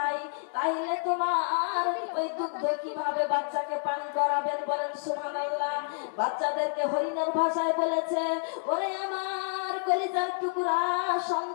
তাহলে তোমার ওই দুগ্ধ কিভাবে বাচ্চাকে পান করাবেন বলেন সুবহানাল্লাহ বাচ্চাদেরকে হরিণের ভাষায় বলেছে ওরে আমার কলিজার টুকরা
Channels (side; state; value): right; silent; 59 dB below the other